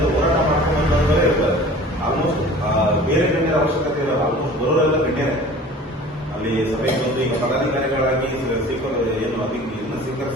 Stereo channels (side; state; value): both; normal; correlation 0.44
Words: ಹೋರಾಟ ಮಾಡ್ಕೊಂಡ್ರೆ ಇರ್ತಾರೆ. ಆಲ್ಮೋಸ್ಟ್ ಬೇರೆ ಗಣ್ಯರ ಅವಶ್ಯಕತೆ ಇರಲ್ಲ. ಆಲ್ಮೋಸ್ಟ್ ಬರೋರೆಲ್ಲ ಗಣ್ಯರೇ ಅಲ್ಲಿ ಸಭೆಗೆ ಬಂದು ಈಗ ಪದಾಧಿಕಾರಿಗಳಾಗಿ ಏನು ಅದಕ್ಕೆ ಇನ್ನು